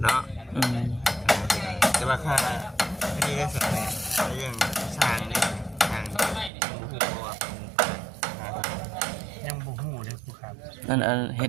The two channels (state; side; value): drops out; left; at 6.5 s